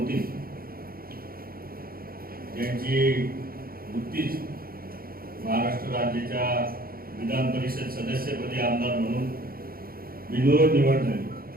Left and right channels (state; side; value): late; left; 0.43 ms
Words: ज्यांची नुकतीच महाराष्ट्र राज्याच्या विधान परिषद सदस्यपदी आमदार म्हणून बिनविरोध निवड झाली